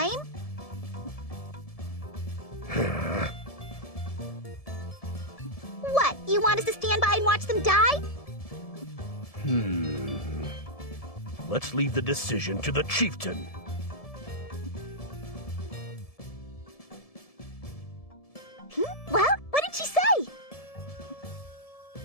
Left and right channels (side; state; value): right; late; 1.7 ms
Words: What, you want us to stand by and watch them die? Let's leave the decision to the chieftain. Well, what did she say?